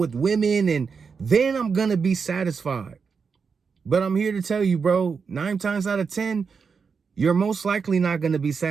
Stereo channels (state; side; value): quieter; left; 5.6 dB